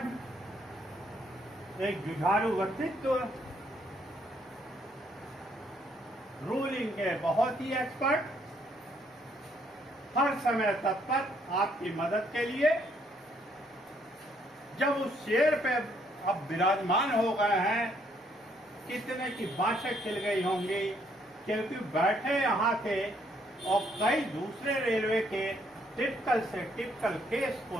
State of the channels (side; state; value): both; normal; correlation 0.69